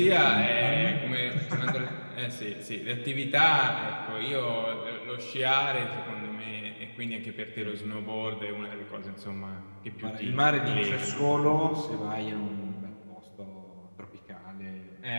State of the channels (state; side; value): inverted; both; correlation -1.00